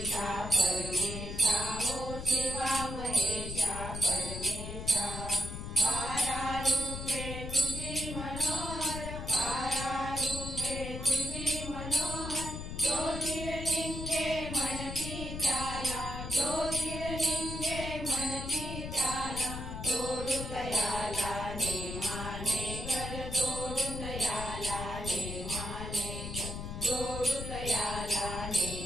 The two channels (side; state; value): left; noise; rumble, 7 dB below the sound